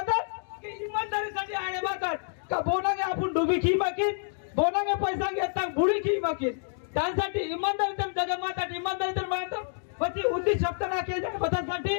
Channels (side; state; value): right; silent; digital silence